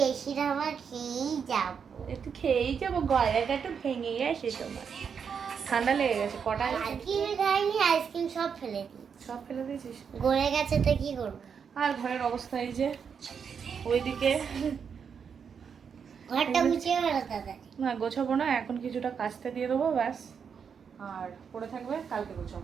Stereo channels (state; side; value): quieter; left; 6.7 dB